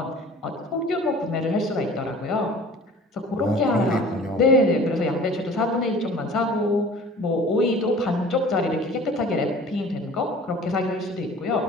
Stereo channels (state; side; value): normal; both; correlation 0.45